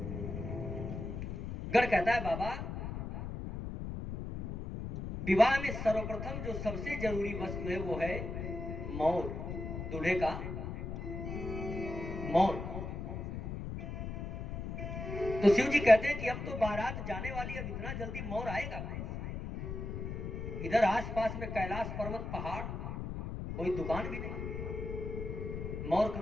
गण कहता है बाबा विवाह में सर्वप्रथम जो सबसे जरूरी वस्तु है वो है मोर, दूल्हे का मोर। तो शिव जी कहते हैं कि अब तो बारात जाने वाली, अब इतना जल्दी मोर आएगा कहां? इधर आसपास में कैलाश पर्वत पहाड़, कोई दुकान भी नहीं, मोर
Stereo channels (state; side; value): noise; left; rumble, 5 dB below the sound